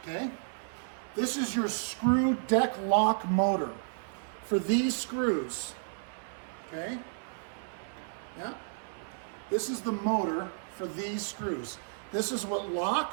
Okay? This is your screw deck lock motor for these screws. Okay? Yeah. This is the motor for these screws. This is what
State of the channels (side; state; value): left; silent; 56 dB below the other